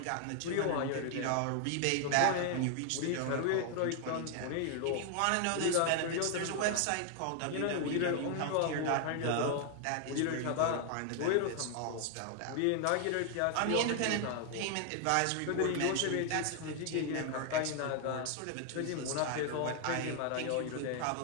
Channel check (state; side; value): different; both; correlation 0.00